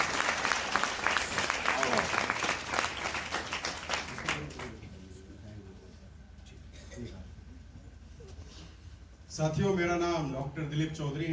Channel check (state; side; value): identical; both; correlation 1.00